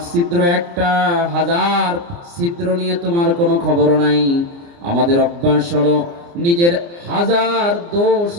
ছিদ্র একটা, 1000 ছিদ্র নিয়ে তোমার কোনো খবর নাই। আমাদের অভ্যাস হলো, নিজের 1000 দোষ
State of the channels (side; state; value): left; late; 29 ms